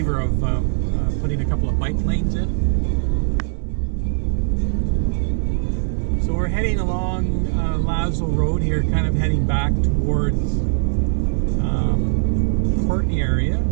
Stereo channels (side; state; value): left; silent; digital silence